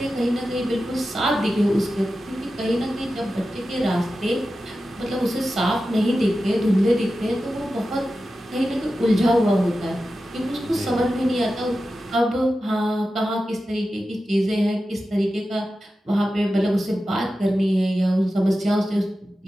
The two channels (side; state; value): both; normal; correlation 0.93